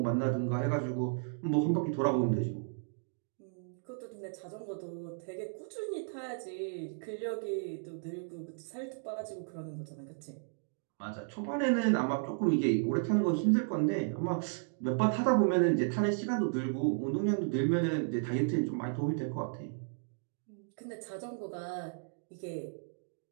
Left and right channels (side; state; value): left; silent; digital silence